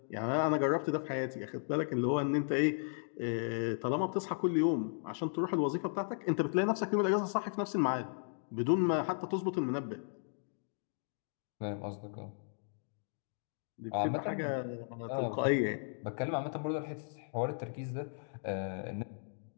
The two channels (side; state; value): right; silent; digital silence